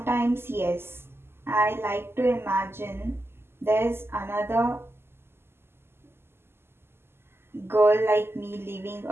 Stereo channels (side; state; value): left; late; 0.12 ms